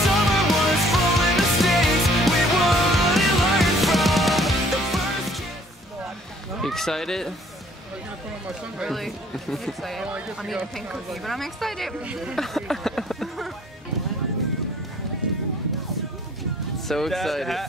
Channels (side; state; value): both; normal; correlation 0.57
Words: Excited? Really excited. I'm eating a pink cookie, but I'm excited. So excited.